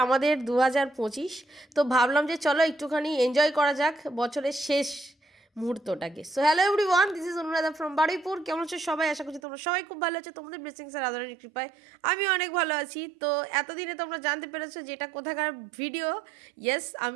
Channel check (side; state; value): left; drops out; at 9.4 s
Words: আমাদের 2025। তো ভাবলাম যে চলো একটুখানি এনজয় করা যাক বছরের শেষ মুহূর্তটাকে। So hello everyone, this is Anuradha from Baruipur. কেমন আছো সবাই? আশা করছি তোমরা সবাই খুব ভালো আছো। তোমাদের ব্লেসিংস আর আদরের কৃপায় আমি অনেক ভালো আছি। তো এতদিনে তোমরা জানতে পেরেছো যেটা কোথাকার ভিডিও। ইয়েস,